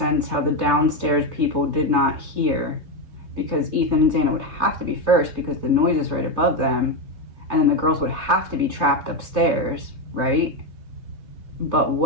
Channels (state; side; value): late; left; 3.3 ms